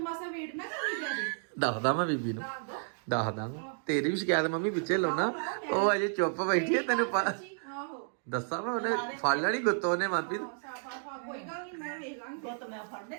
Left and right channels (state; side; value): silent; left; digital silence